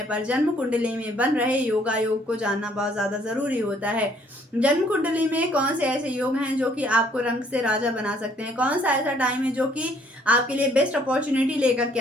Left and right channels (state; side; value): normal; both; correlation 0.63